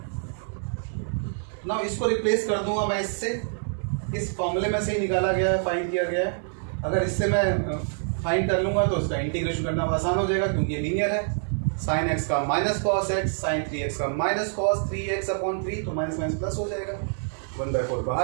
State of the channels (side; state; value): left; silent; digital silence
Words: Now इसको रिप्लेस कर दूंगा मैं इससे, इस फॉर्मूले में से ही निकाला गया है, फाइंड किया गया है। अगर इससे मैं फाइंड कर लूंगा तो इसका इंटीग्रेशन करना आसान हो जाएगा क्योंकि ये लीनियर है। साइन एक्स का minus cos x, sine 3x का माइनस कॉस 3x अपॉन 3, तो माइनस माइनस प्लस हो जाएगा, 1/4